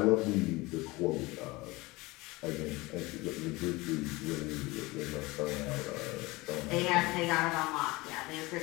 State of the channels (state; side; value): quieter; right; 22.1 dB